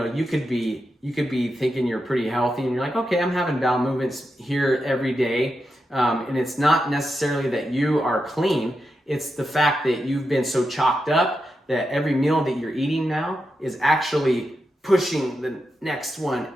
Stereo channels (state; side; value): normal; both; correlation 0.87